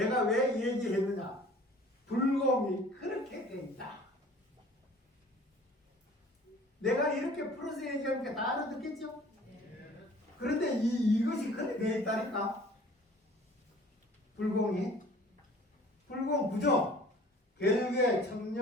왜 얘기했느냐? 불공이 그렇게 돼 있다. 내가 이렇게 풀어서 얘기하니까 다 알아듣겠죠? 그런데 이것이 그렇게 돼 있다니까. 불공 부정, 결계,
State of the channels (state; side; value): normal; both; correlation 0.49